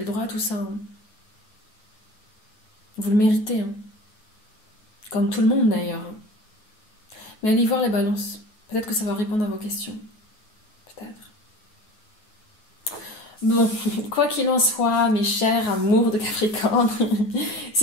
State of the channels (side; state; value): right; late; 9.4 ms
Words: le droit à tout ça. Hein. Vous le méritez. Hein. Comme tout le monde d'ailleurs. Mais allez voir les balances. Peut-être que ça va répondre à vos questions. Peut-être. Bon, quoi qu'il en soit, mes chers amours de Capricorne,